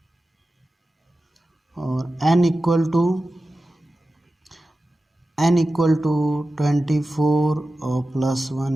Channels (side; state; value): both; normal; correlation 0.94